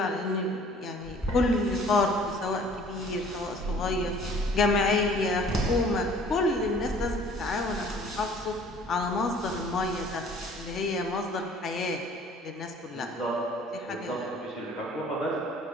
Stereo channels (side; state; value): both; normal; correlation 0.52